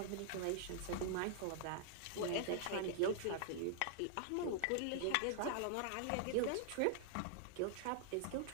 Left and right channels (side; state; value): both; different; correlation -0.01